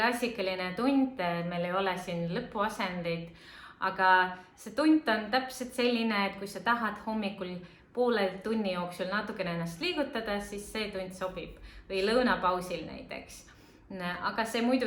tund, meil ei ole siin lõpuasendeid, aga see tund on täpselt selline, et kui sa tahad hommikul poole tunni jooksul natukene ennast liigutada, siis see tund sobib või lõunapausil näiteks. Aga see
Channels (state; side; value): identical; both; correlation 1.00